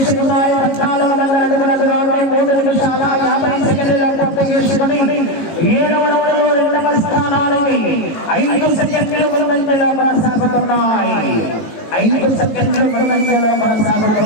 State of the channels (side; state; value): right; late; 18 ms